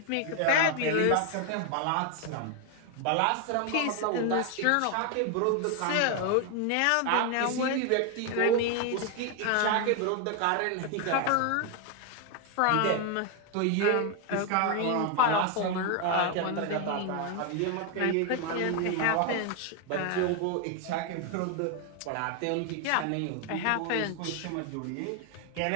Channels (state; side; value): different; both; correlation 0.01